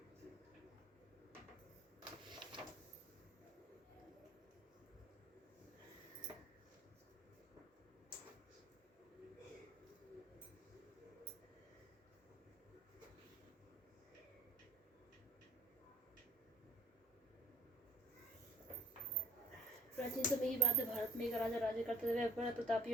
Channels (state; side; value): normal; both; correlation 0.51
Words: प्राचीन समय की बात है। भारत में एक राजा राज्य करते हुए बड़ा